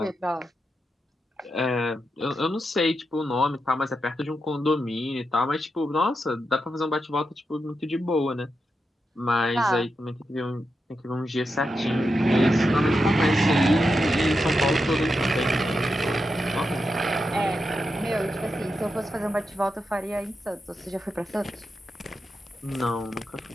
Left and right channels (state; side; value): normal; both; correlation 0.87